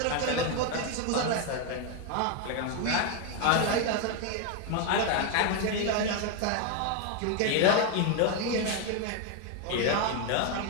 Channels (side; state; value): both; different; correlation 0.01